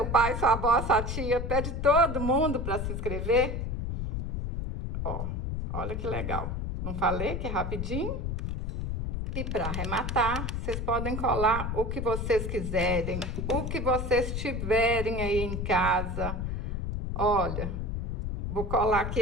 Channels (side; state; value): left; noise; rumble, 3 dB below the sound